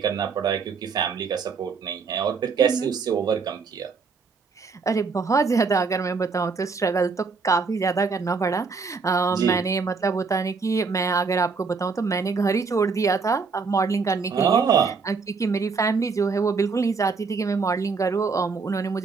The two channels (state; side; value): quieter; left; 4.9 dB